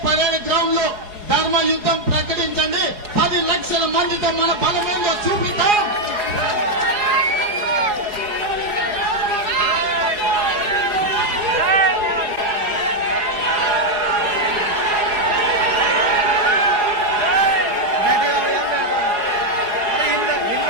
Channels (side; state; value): left; late; 4.8 ms